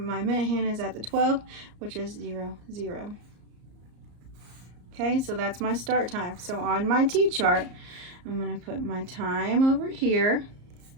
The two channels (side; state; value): left; late; 34 ms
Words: minute hand is at the 12, which is 0, 0. Okay, so that's my start time. So on my T-chart, I'm going to put my time over here